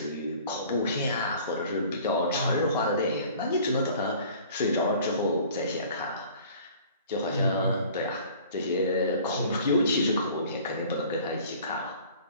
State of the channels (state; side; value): inverted; both; correlation -0.49